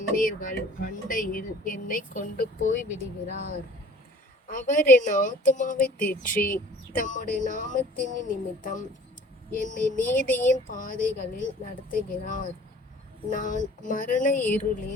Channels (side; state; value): both; normal; correlation 0.49